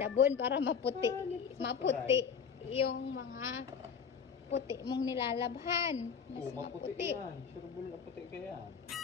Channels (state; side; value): quieter; right; 6.8 dB